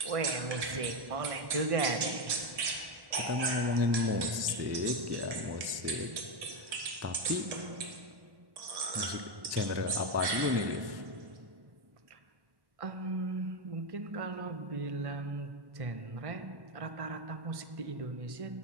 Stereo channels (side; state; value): left; late; 1.1 ms